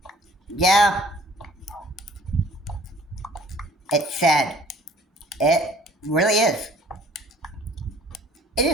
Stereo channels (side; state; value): both; normal; correlation 0.54